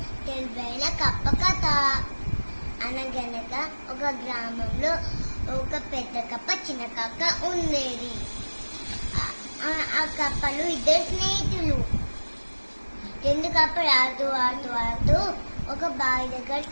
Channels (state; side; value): inverted; both; correlation -1.00